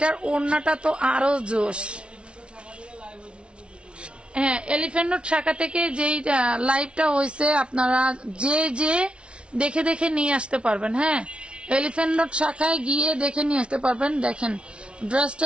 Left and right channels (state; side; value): late; left; 0.058 ms